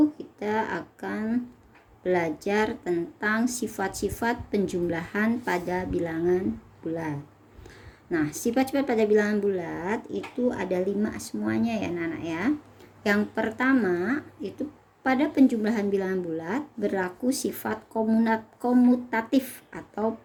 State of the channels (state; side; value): identical; both; correlation 1.00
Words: kita akan belajar tentang sifat-sifat penjumlahan pada bilangan bulat. Nah, sifat-sifat pada bilangan bulat itu ada 5 semuanya ya anak-anak ya. Yang pertama itu pada penjumlahan bilangan bulat berlaku sifat komutatif atau